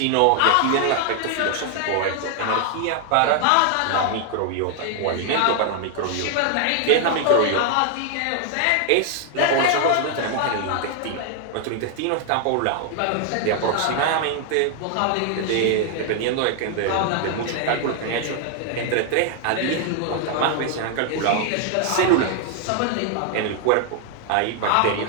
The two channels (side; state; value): both; different; correlation 0.00